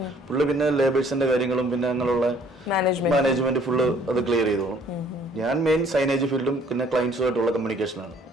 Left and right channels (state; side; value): normal; both; correlation 0.58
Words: പുള്ളി പിന്നെ ലേബേഴ്സിന്റെ കാര്യങ്ങളും പിന്നെ അങ്ങനെയുള്ള മാനേജ്മെന്റ് ഫുള്ള് അത് ക്ലിയർ ചെയ്തോളും. ഞാൻ മെയിൻ സൈനേജ് ഫീൽഡും പിന്നെ ക്ലയൻസുമായിട്ടുള്ള കമ്മ്യൂണിക്കേഷനാണ്,